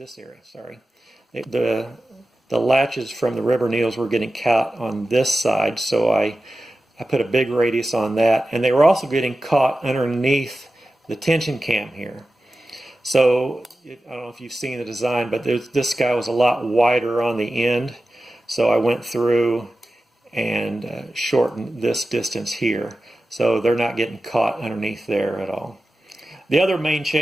area. Sorry, the latches from the rubber needles were getting caught on this side, so I put a big radius on that, and they were also getting caught underneath the tension cam here. So I don't know if you've seen the design, but this guy was a lot wider on the end, so I went through and shortened this distance here, so they're not getting caught underneath there at all. The other main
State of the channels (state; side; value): normal; both; correlation 0.94